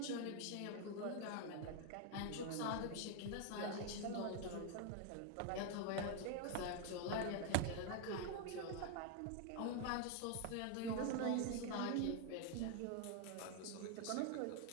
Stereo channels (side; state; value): both; different; correlation 0.00